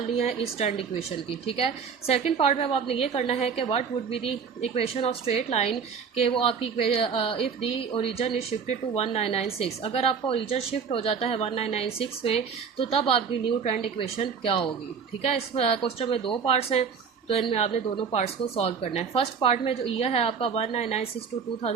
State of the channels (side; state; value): left; quieter; 6.3 dB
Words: है इस ट्रेंड इक्वेशन की। ठीक है, सेकेंड पार्ट में अब आपने ये करना है कि what would be the equation of straight line, के वो आपकी if the origin is shifted to 1996। अगर आपका ओरिजिन शिफ्ट हो जाता है 1996 में तो तब आपकी न्यू ट्रेंड इक्वेशन क्या होगी। ठीक है, इस क्वेश्चन में 2 पार्ट्स हैं, तो इनमें आपने दोनों पार्ट्स को सॉल्व करना है। फर्स्ट पार्ट में जो ईयर है आपका 1996 टू